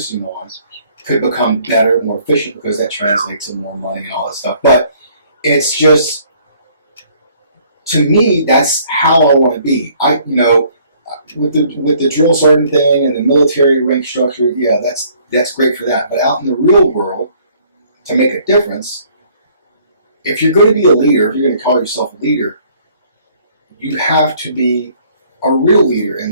on could become better, more efficient, because that translates to more money and all that stuff. But it's just, to me, that's how I want to be. With the drill sergeant thing and the military rank structure, yeah, that's great for that. But out in the real world, to make a difference, if you're going to be a leader, if you're going to call yourself a leader, you have to be a real leader.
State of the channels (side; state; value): both; inverted; correlation -0.61